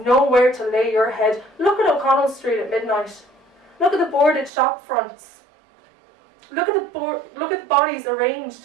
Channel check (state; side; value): drops out; left; at 4.5 s